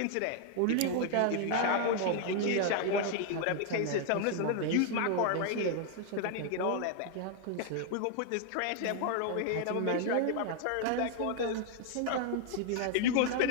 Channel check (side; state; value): both; different; correlation 0.00